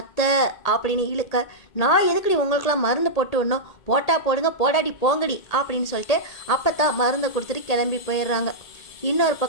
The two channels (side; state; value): right; late; 1.8 ms